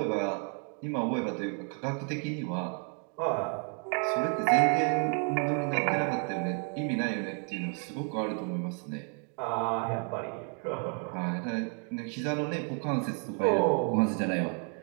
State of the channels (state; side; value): quieter; left; 39.5 dB